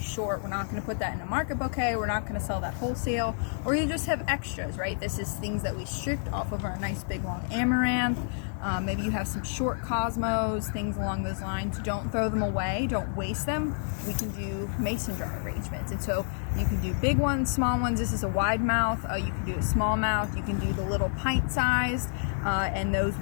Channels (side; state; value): right; silent; digital silence